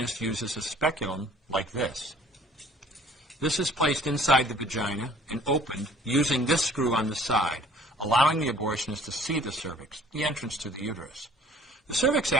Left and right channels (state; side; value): normal; both; correlation 0.53